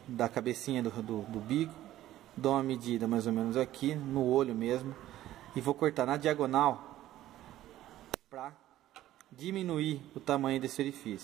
da cabecinha do bico, dou uma medida mais ou menos aqui, no olho mesmo, e vou cortar na diagonal para diminuir o tamanho desse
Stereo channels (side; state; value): left; quieter; 13.9 dB